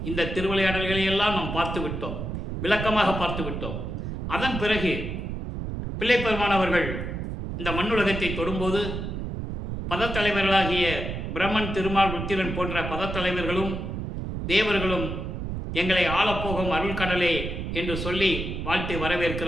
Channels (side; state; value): right; noise; rumble, 5 dB below the sound